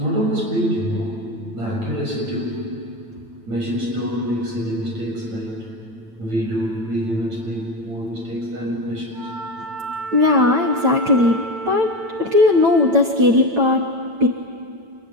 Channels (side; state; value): left; late; 9.0 ms